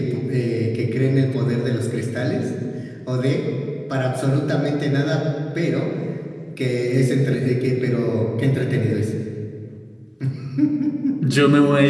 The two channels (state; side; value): identical; both; correlation 1.00